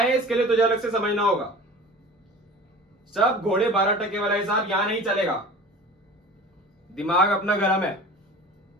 इसके लिए तुझे अलग से समझना होगा। सब घोड़े 12 टके वाला हिसाब यहां नहीं चलेगा। दिमाग अपना गरम है,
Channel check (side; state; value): both; normal; correlation 0.39